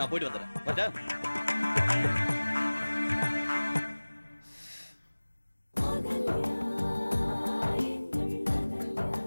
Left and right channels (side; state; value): both; inverted; correlation -1.00